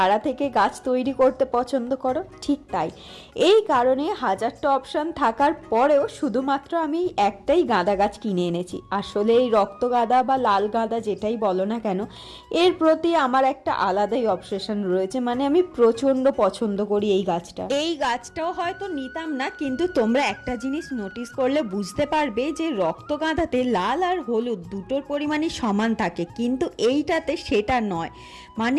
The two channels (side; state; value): both; identical; correlation 1.00